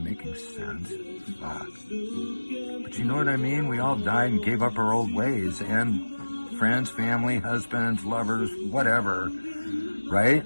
sense? Fuck. But you know what I mean? We all died and gave up our old ways, and friends, family, husbands, lovers, whatever. Right?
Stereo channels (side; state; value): both; inverted; correlation -1.00